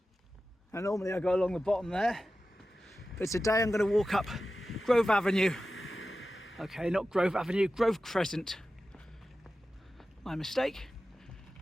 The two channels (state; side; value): normal; both; correlation 0.94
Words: And normally I go along the bottom there, but today I'm going to walk up Grove Avenue. Okay, not Grove Avenue, Grove Crescent. My mistake.